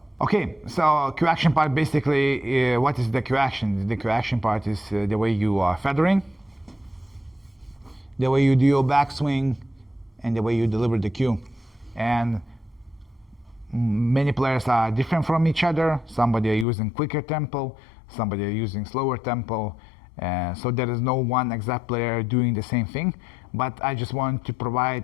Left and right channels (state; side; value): drops out; right; at 16.7 s